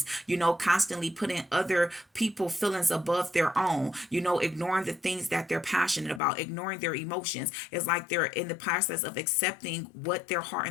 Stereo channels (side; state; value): right; drops out; at 6.2 s